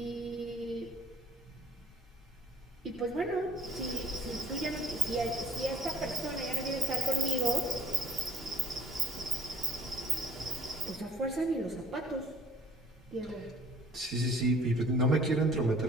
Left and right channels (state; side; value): normal; both; correlation 0.52